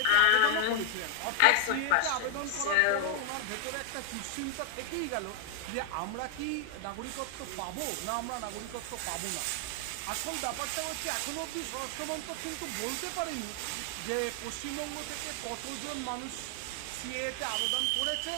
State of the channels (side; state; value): both; different; correlation 0.00